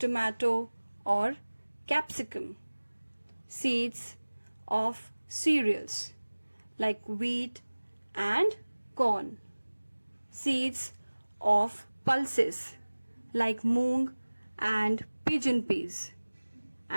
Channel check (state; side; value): inverted; both; correlation -1.00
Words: or capsicum. Seeds of cereals like wheat and corn. Seeds of pulses like moong and pigeon peas,